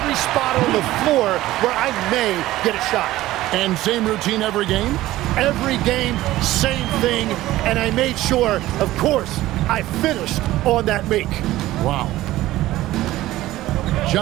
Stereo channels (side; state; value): left; quieter; 16.0 dB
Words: spot on the floor where I may get a shot. And same routine every game? Every game, same thing, and I made sure, of course, I finished on that make. Wow.